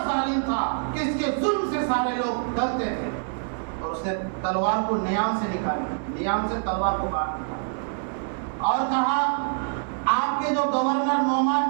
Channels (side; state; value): left; silent; 61 dB below the other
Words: ظالم تھا کہ اس کے ظلم سے سارے لوگ ڈرتے تھے. اور اس نے تلوار کو نیام سے نکالا, نیام سے تلوار کو باہر نکالا اور کہا آپ کے جو گورنر